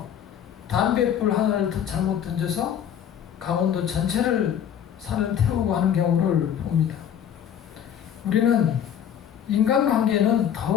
담뱃불 하나를 잘못 던져서 강원도 전체를 산을 태우고 하는 경우를 봅니다. 우리는 인간관계는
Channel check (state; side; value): quieter; right; 9.2 dB